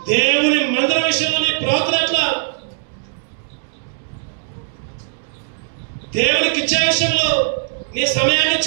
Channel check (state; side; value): silent; left; digital silence